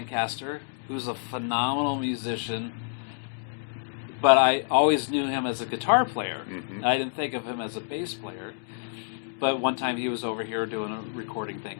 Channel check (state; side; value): silent; right; digital silence